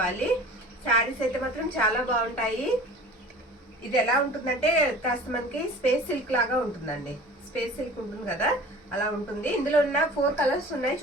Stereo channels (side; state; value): both; normal; correlation 0.42